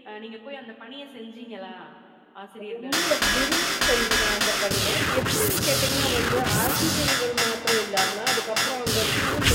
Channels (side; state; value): both; identical; correlation 1.00